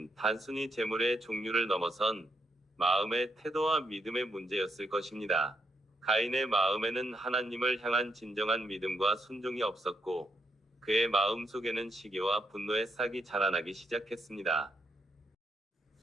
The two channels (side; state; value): both; normal; correlation 0.78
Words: 단순히 제물의 종류를 넘어선 마음의 태도와 믿음의 문제였을 것입니다. 가인의 마음에는 하나님을 향한 진정한 믿음과 순종이 없었고 그의 마음 속에는 시기와 분노의 싹이 자라나기 시작했습니다.